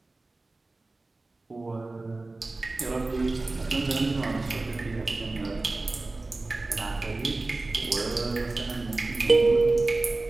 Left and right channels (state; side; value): quieter; left; 3.2 dB